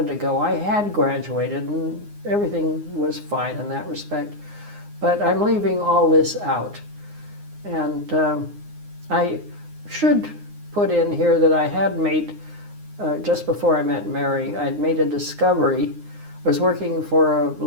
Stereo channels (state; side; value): late; left; 9.7 ms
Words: to go. I had graduated, and everything was fine in that respect. But I'm leaving all this out. And I should put in here that I had made, just before I met Mary, I'd made a discovery. I was working for a